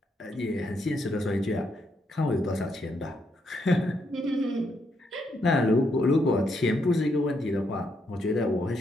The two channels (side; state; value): both; normal; correlation 0.78